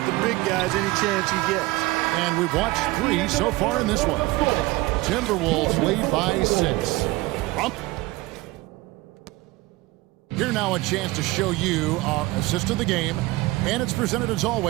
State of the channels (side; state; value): left; quieter; 20.6 dB